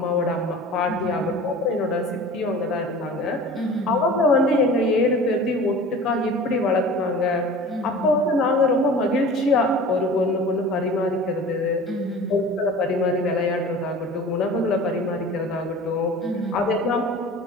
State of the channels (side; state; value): both; normal; correlation 0.40